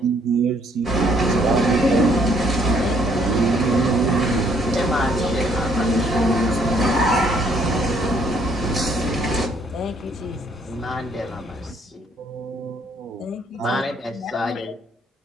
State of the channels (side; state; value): both; normal; correlation 0.65